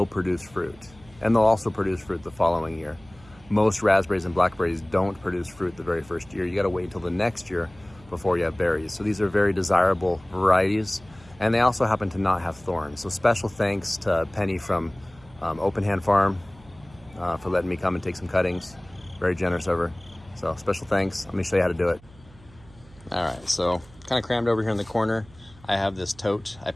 produce fruit. And they'll also produce fruit the following year. Most raspberries and blackberries don't produce fruit the very first year. You gotta wait until the next year before you have berries. So these are very desirable varieties, and they also happen to not have thorns. So special thanks to Penny from Open Hand Farm for letting me come and take some cuttings. Very generous of her. So special thanks. Let me show you how to do it. All right, so kind of crammed over here in the corner. I have this tote. I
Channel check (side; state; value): right; noise; hum, 24 dB below the sound